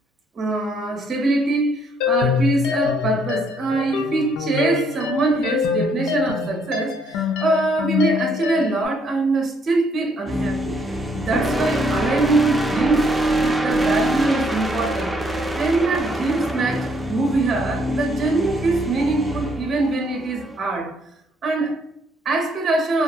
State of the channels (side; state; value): both; normal; correlation 0.69